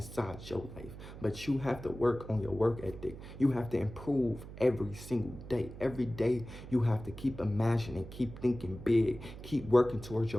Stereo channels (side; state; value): right; noise; hum, 13 dB below the sound